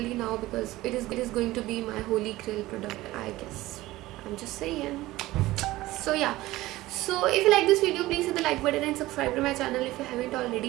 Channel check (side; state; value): left; quieter; 17.6 dB